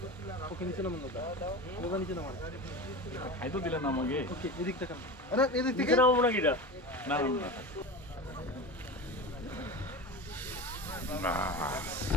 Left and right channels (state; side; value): normal; both; correlation 0.28